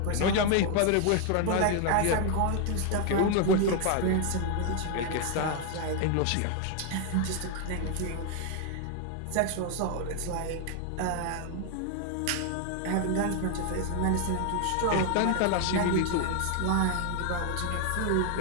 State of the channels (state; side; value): different; both; correlation 0.00